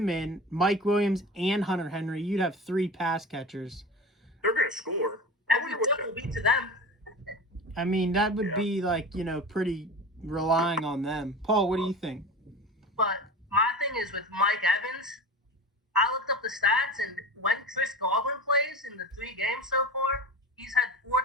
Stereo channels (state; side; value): normal; both; correlation 0.30